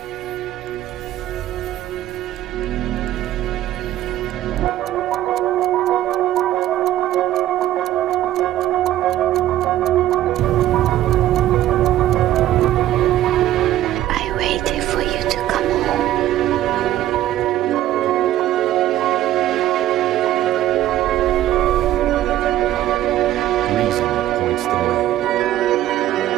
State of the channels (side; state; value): left; quieter; 13.5 dB